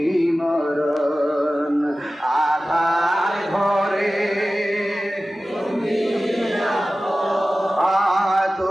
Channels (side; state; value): both; normal; correlation 0.96